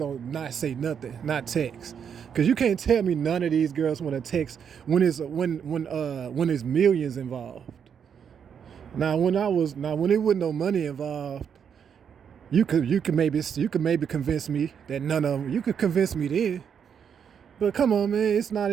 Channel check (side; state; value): left; quieter; 7.6 dB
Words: not say nothing, not text. Cause you can't tell me none of these girls want to text when there's millions involved. Now when there wasn't no money involved, you could maybe convince me that none of them. You could convince me then. But come on, man, it's not